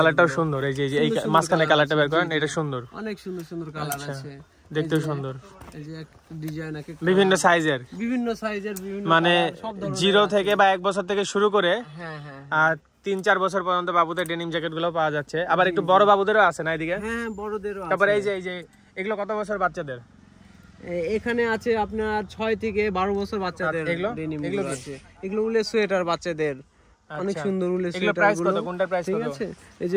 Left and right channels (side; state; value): both; identical; correlation 1.00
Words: সুন্দর। এই যে এই মাঝখানে কালারটা বের করেন, এটা সুন্দর, অনেক সুন্দর সুন্দর কালার আছে, দেখতেও সুন্দর। এই যে এক ডিজাইন আছে, বিভিন্ন সাইজের, বিভিন্ন মানে 0 থেকে বা 1 বছর থেকে শুরু করে হ্যাঁ হ্যাঁ আর 3-4 বছর পর্যন্ত বাবুদের ডেনিম জ্যাকেট গুলো পাওয়া যাচ্ছে। আবার একটু বড় বাবুদেরও আছে না এদিকে? হ্যাঁ, বড়দেরও আছে। তারপরে এই যে এগুলো কত বছর বাচ্চাদের? এখানে আছে আপনার 6 থেকে 12 বছর বাচ্চাদের ডেনিম গুলো আছে। এগুলো উলের সোয়েটার বাচ্চাদের, অনেক সুন্দর উলের সোয়েটার। এগুলো প্রাইস কত? কোনটার প্রাইস কত? ঠিক আছে, এই